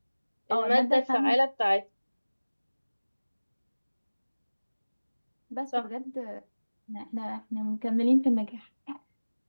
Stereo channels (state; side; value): inverted; both; correlation -1.00